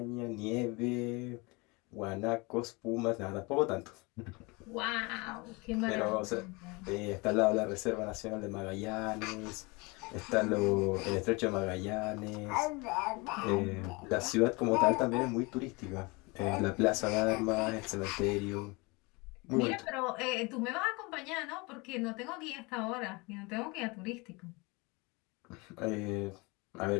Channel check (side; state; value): right; quieter; 26.8 dB